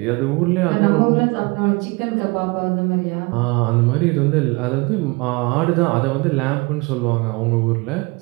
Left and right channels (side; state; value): left; quieter; 26.8 dB